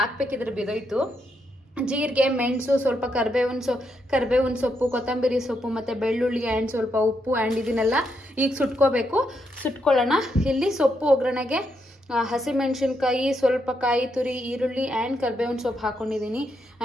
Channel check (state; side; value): normal; both; correlation 0.80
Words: ಬಿದೋಯ್ತು. ಜೀರಿಗೆ, ಮೆಣಸು, ಸ್ವಲ್ಪ ಕರಿಬೇವಿನ ಸೊಪ್ಪು, ಕೊತ್ತಂಬರಿ ಸೊಪ್ಪು ಮತ್ತು ಬೆಳ್ಳುಳ್ಳಿ ಆ್ಯಂಡ್ ಸ್ವಲ್ಪ ಉಪ್ಪು ಆ್ಯಂಡ್ ಇದನ್ನೆಲ್ಲ ಈಗ ಸುಟ್ಕೊಳ್ಳೋಣ. ಇಲ್ಲಿ ಸೊಪ್ಪು ಒಗ್ಗರಣೆಗೆ ಹಸಿಮೆಣಸಿನ್ಕಾಯಿ, ಸ್ವಲ್ಪ ಕಾಯಿ ತುರಿ, ಈರುಳ್ಳಿ ಆ್ಯಂಡ್ ಕರಿಬೇವಿನ ಸೊಪ್ಪು ಹಾಕ್ಕೊಂಡಿದ್ದೀನಿ.